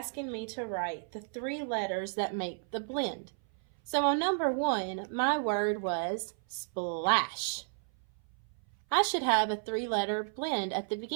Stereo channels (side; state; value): left; silent; 56 dB below the other